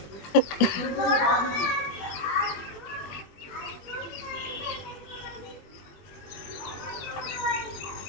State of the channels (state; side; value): late; right; 21 ms